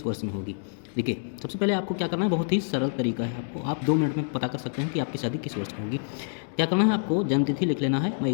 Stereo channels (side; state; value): right; silent; digital silence